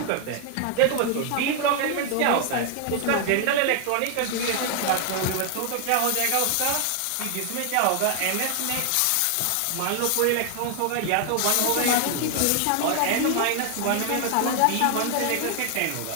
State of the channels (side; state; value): both; different; correlation 0.00